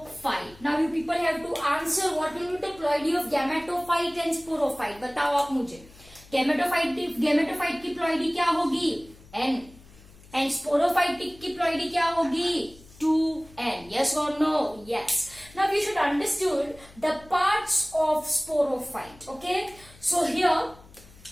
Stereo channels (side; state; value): left; noise; hum, 23 dB below the sound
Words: Now you people have to answer what will be the ploidy of gametophyte and sporophyte. बताओ आप मुझे. gametophyte की ploidy क्या होगी? N. and sporophytic की ploidy क्या होगी? 2n. Yes or no? Yes. Now you should understood the parts of sporophyte. Okay. So here,